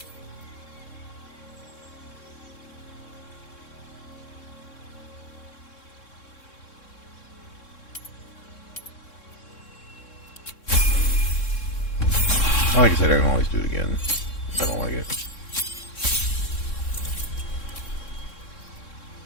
Like I said, I can always do it again if I don't like it.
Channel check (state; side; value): late; right; 3.6 ms